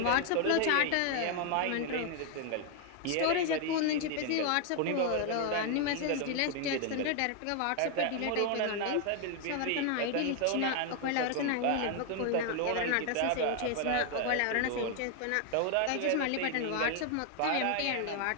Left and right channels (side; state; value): both; different; correlation 0.00